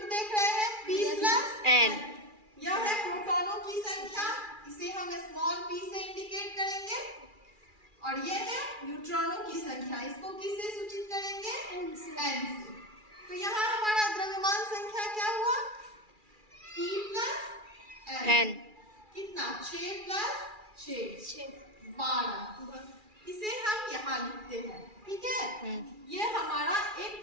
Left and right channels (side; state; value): left; late; 2.4 ms